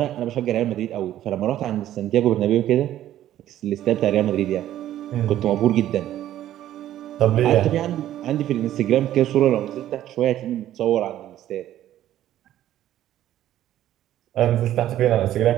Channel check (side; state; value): left; quieter; 12.6 dB